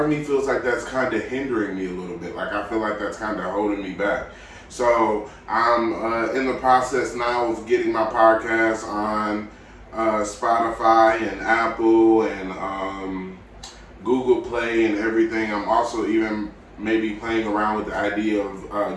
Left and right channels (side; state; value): both; identical; correlation 1.00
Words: of me feels like that's kind of hindering me a little bit. Like, I feel like that's kind of holding me back. So I'm in the process now of getting my podcast on Spotify and Apple and Google Play and everything. I'm also even maybe playing around with the idea